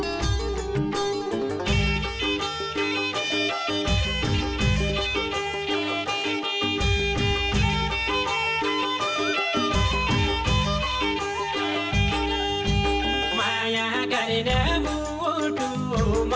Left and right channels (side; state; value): both; identical; correlation 1.00